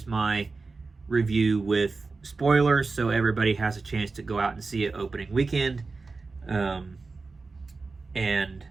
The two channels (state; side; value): quieter; left; 4.0 dB